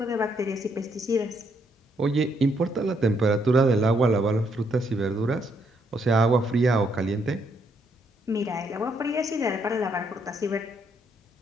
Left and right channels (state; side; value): normal; both; correlation 0.73